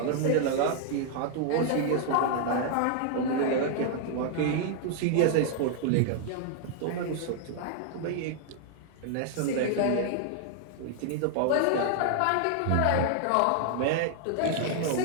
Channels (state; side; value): different; both; correlation 0.00